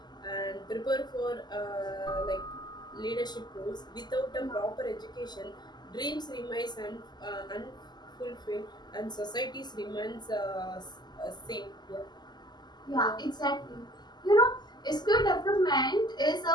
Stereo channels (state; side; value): late; right; 0.21 ms